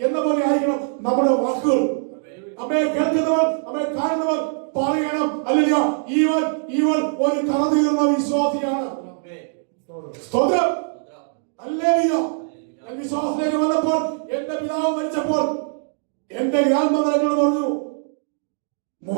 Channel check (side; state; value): left; silent; digital silence